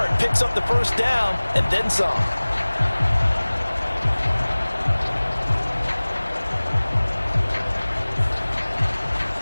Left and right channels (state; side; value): inverted; both; correlation -1.00